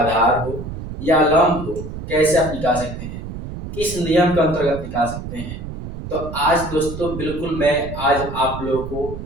हो या लंब हो, कैसे आप निकाल सकते हैं, किस नियम के अंतर्गत निकाल सकते हैं। तो आज दोस्तों बिल्कुल मैं आज आप लोगों को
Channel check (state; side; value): noise; right; rumble, 9 dB below the sound